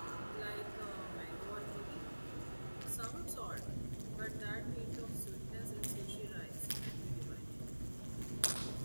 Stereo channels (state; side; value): inverted; both; correlation -1.00